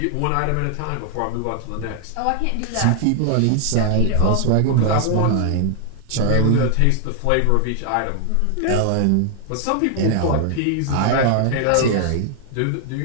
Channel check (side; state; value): both; different; correlation 0.00